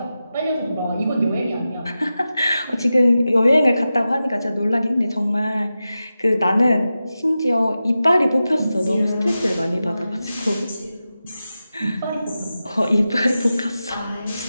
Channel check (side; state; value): both; inverted; correlation -0.92